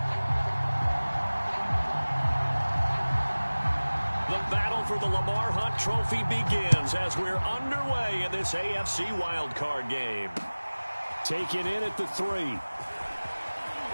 For the Lamar Hunt Trophy begins as we're underway in this AFC wildcard game. Taken in at the 3. And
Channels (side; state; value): both; inverted; correlation -1.00